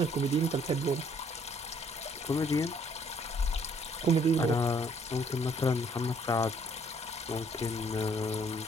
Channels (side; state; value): both; normal; correlation 0.63